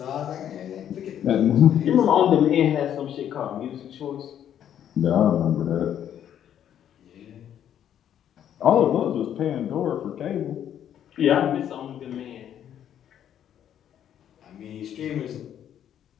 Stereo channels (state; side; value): quieter; right; 10.0 dB